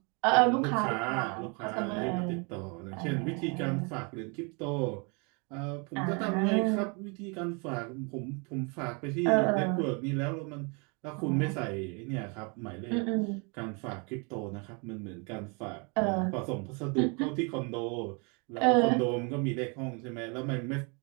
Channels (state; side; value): quieter; left; 33.1 dB